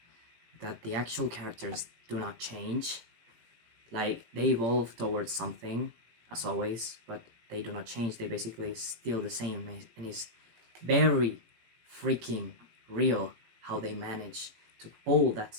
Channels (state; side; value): late; left; 18 ms